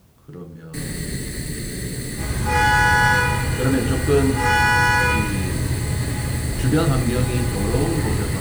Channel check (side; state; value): both; identical; correlation 1.00